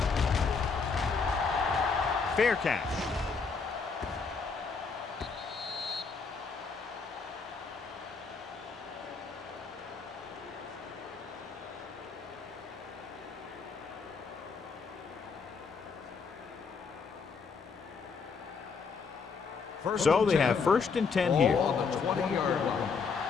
Fair catch. So they have first and 10 here. Ball on the 20-yard line.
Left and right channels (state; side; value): quieter; right; 5.2 dB